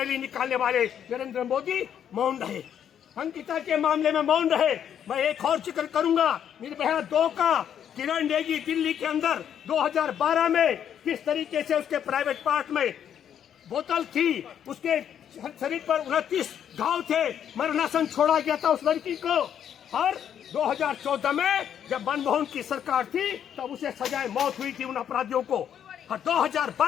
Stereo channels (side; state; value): right; quieter; 9.2 dB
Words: निकालने वाले नरेंद्र मोदी मौन रहे। अंकिता के मामले में मौन रहे। मैं एक और जिक्र करूंगा, निर्भया 2 का किरण नेगी दिल्ली के अंदर 2012 में किस तरीके से उसके प्राइवेट पार्ट में बोतल थी, उसके शरीर पर 29 घाव थे, मरणासन छोड़ा गया था उस लड़की को। और 2014 में जब मनमोहन की सरकार थी तब उसे सजाए मौत हुई थी उन अपराधियों को। और